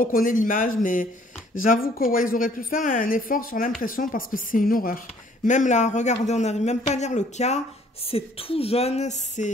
l'image, mais j'avoue que ouais, ils auraient pu faire un effort sur l'impression parce que c'est une horreur. Même là, regardez, on n'arrive même pas à lire le cas. C'est tout jaune,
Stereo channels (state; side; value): normal; both; correlation 0.60